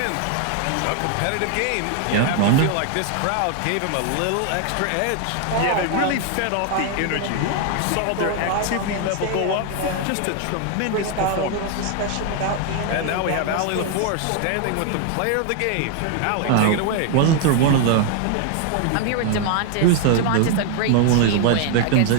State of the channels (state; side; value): different; both; correlation 0.00